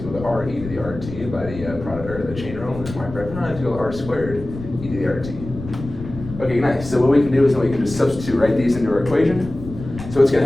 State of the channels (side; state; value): left; noise; rumble, 11 dB below the sound